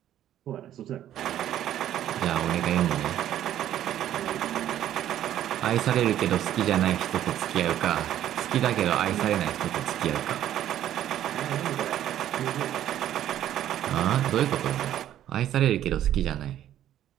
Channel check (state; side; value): quieter; left; 11.7 dB